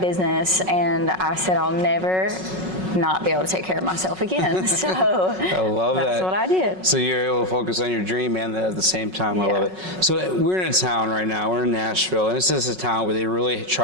and I said I'll never not be able to take care of myself again. So I love that's what I did. So you're able to focus on your dream and at the same time. I love it. So we're in a town right now. We're in Nashville, and this is a town where they really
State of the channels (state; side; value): late; left; 5.4 ms